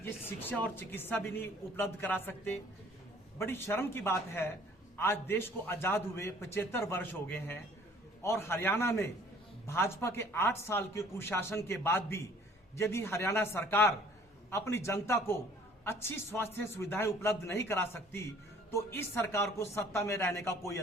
ये शिक्षा और चिकित्सा भी नहीं उपलब्ध करा सकते? बड़ी शर्म की बात है, आज देश को आजाद हुए 75 वर्ष हो गए हैं और हरियाणा में भाजपा के 8 साल के कुशासन के बाद भी यदि हरियाणा सरकार अपनी जनता को अच्छी स्वास्थ्य सुविधाएं उपलब्ध नहीं करा सकती तो इस सरकार को सत्ता में रहने का कोई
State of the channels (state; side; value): normal; both; correlation 0.55